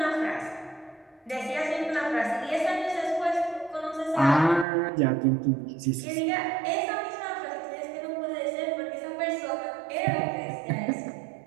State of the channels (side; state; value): left; drops out; at 4.7 s